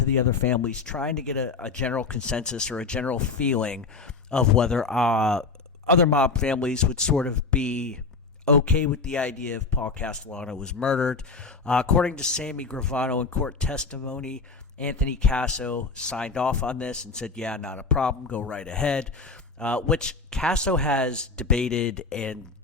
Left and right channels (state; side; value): quieter; right; 4.4 dB